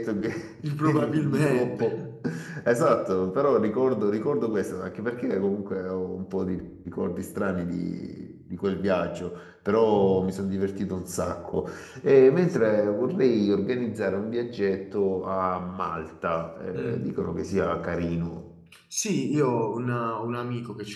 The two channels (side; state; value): both; identical; correlation 1.00